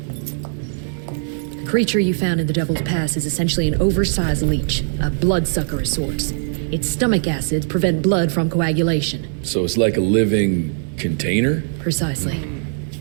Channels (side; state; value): left; silent; digital silence